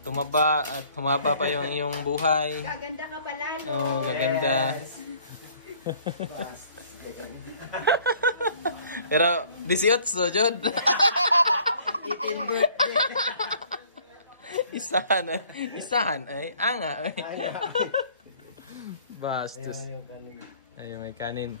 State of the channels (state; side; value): inverted; both; correlation -0.56